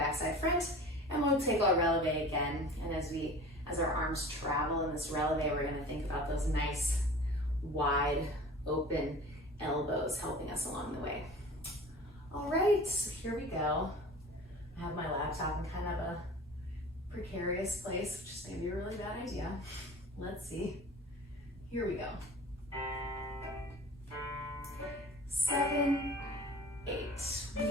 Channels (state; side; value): normal; both; correlation 0.40